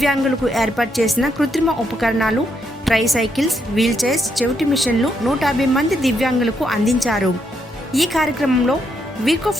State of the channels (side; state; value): both; normal; correlation 0.78